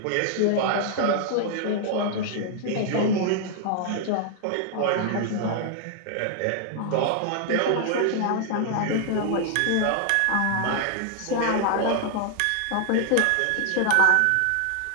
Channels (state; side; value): different; both; correlation 0.00